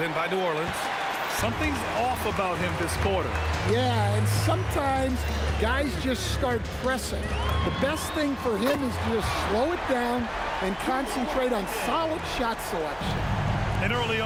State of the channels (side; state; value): both; identical; correlation 1.00